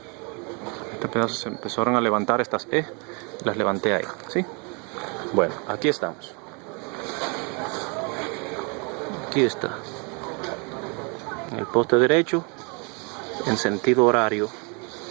Este pedazo se empezaron a levantar estas E. Las levanté ahí, ¿sí? Bueno, aquí estamos. Aquí está. En el poste derecho, en sentido horario,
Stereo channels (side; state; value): left; quieter; 33.2 dB